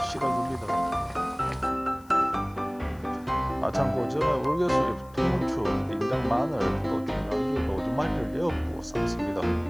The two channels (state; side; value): noise; left; hiss, 28 dB below the sound